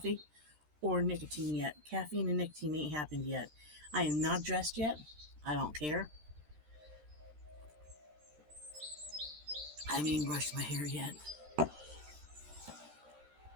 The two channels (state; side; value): late; left; 13 ms